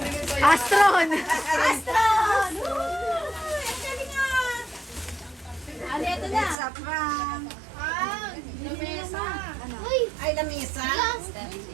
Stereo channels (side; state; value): left; drops out; at 6.6 s